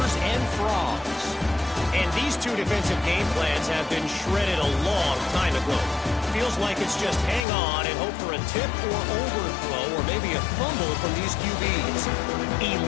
and Frogs. And these 2 defensive game plans have been shredded a long time ago. Feels like it's just hang on and hope for a tip or overthrow or maybe a fumble from these QBs.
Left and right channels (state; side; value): drops out; right; at 7.5 s